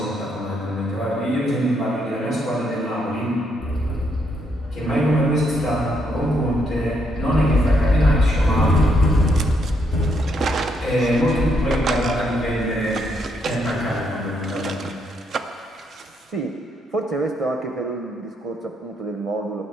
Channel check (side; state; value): both; normal; correlation 0.75